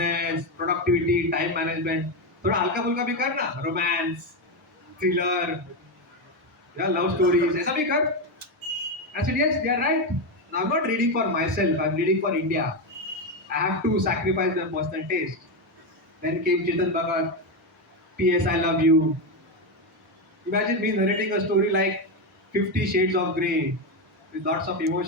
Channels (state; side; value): normal; both; correlation 0.10